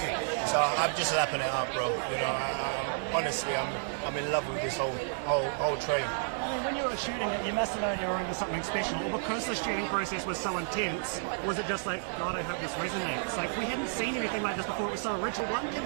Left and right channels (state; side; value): silent; left; digital silence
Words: So I'm just lapping it up, bro. You know, honestly, I'm in love with this whole train. I mean, when you were shooting it, you must have known you were into something special. Or because the shooting process was so intense, was it just like, God, I hope this resonates? Like, we hadn't seen anything like this before. It was so original. One